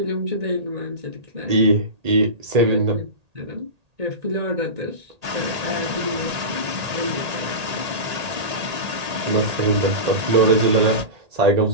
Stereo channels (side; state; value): left; late; 1.8 ms